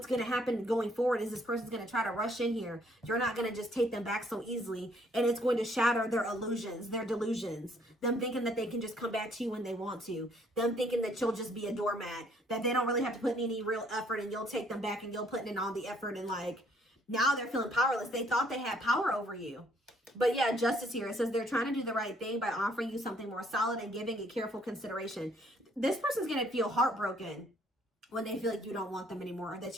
going to happen going forward is this person's going to try to rush in here. You're not going to just take them back so easily. And it's going to shatter their illusions, their delusions. Them thinking that they can just come back to you when they want to. Them thinking that you'll just be a doormat. That they don't really have to put in any real effort and you'll take them back and you'll put in all the effort. And like, now they're feeling powerless. They thought they had power over you. But yeah, justice here. It says they're trying to do the right thing by offering you something more solid and giving it careful consideration. This person's going to feel heartbroken when they feel like you don't want them anymore or that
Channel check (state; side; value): normal; both; correlation 0.65